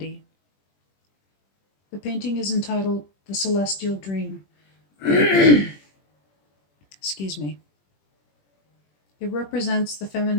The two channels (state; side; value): late; right; 21 ms